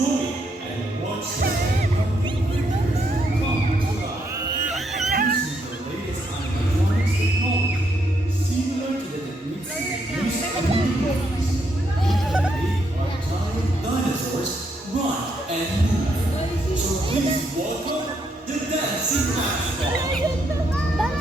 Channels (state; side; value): normal; both; correlation 0.76